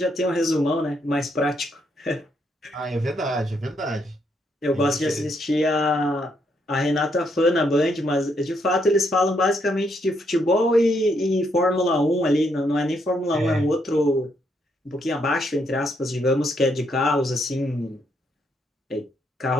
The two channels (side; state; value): both; normal; correlation 0.75